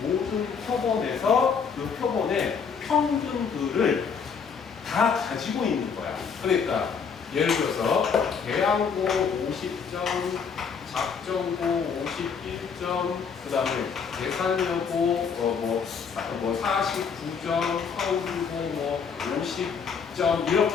모든 표본에서 그 표본의 평균들을 다 가지고 있는 거야. 그러니까 예를 들어서 대항고 50점, 작전고 51점, 그 다음에 계산여고 49점, 서울고 50점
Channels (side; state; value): right; quieter; 6.1 dB